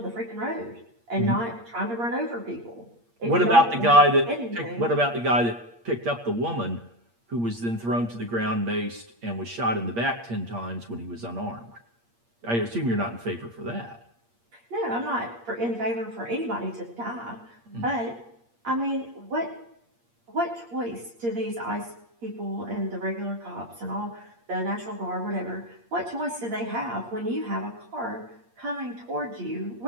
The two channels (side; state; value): left; late; 8.6 ms